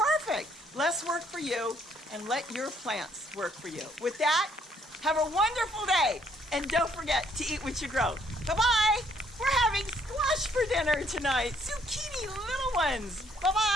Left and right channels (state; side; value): normal; both; correlation 0.67